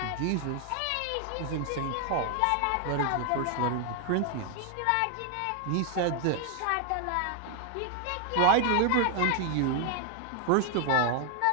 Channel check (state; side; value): different; both; correlation 0.00